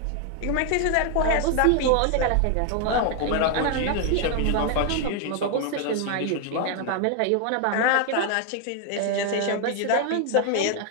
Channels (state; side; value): different; both; correlation 0.00